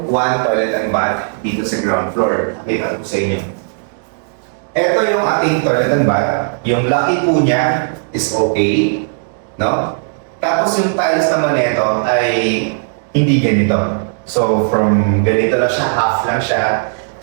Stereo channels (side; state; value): left; silent; digital silence